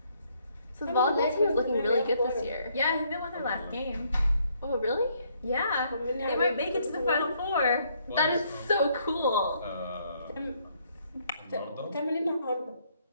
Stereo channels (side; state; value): both; inverted; correlation -0.69